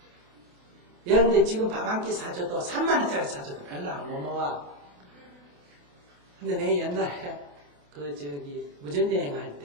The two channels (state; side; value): late; left; 28 ms